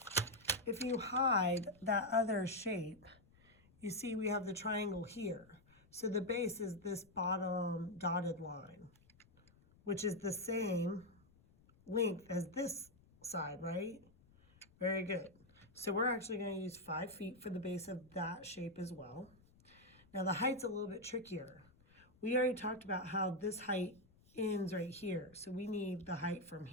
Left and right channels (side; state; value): left; noise; rumble, 28 dB below the sound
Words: If you hide that other shape, you see we have the triangle here. So the base is this bottom dotted line, which is the same length as this side, right? Very good. So we're actually going to use 5 feet for the base of that shape as well. Now the height's a little bit trickier. We already talked about how this height ends right here. So we need the height from